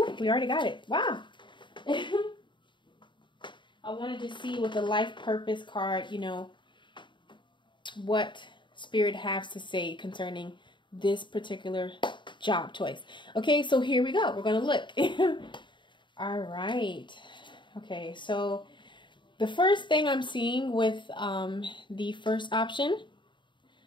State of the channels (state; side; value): late; right; 0.23 ms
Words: already got it. Wow. I wanted to see with the life purpose card, you know, what Spirit has to say concerning this particular job choice. Okay, so here we go. We're going to look. All right. Okay, so the first thing I'm seeing with the first option,